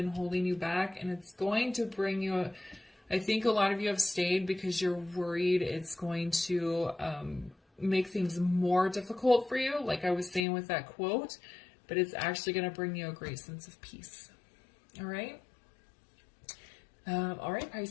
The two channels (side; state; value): right; drops out; at 10.5 s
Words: holding you back, and it's going to bring you I think a lot of you have stayed because you're worried it's going to make things more difficult for you, like I was saying with that quote, but it's actually going to bring you a great sense of peace. All right? All right,